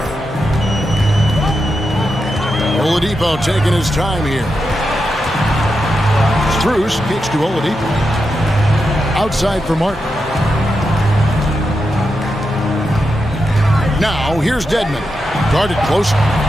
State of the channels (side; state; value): both; normal; correlation 0.87